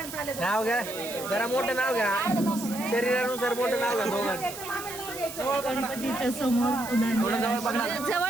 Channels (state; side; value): noise; right; hiss, 11 dB below the sound